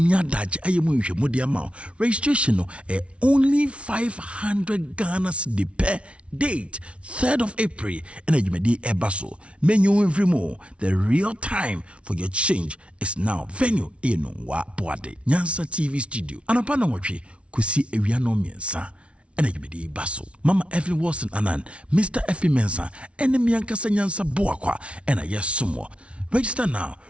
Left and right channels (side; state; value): left; late; 0.060 ms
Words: you dash ayemu mudi amount. Registration only 500 Ghana cedi per date 3rd of April. And you may di ebaso. Menu every more. The real time for your change is now. Venue wa boade. Nyansa TV studio. Anapana wachi kusi ewiano miensa. And you be basso. Mama Evelyn Wilson Anan, Mr. F.P. Mensah, and the Mianka Nyansa Boakwa, and I yes sumo. Register now,